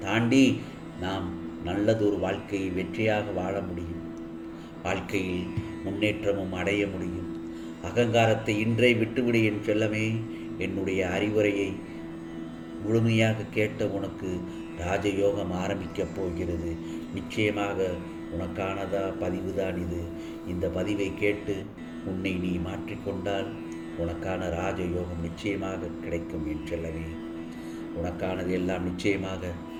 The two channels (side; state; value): both; identical; correlation 1.00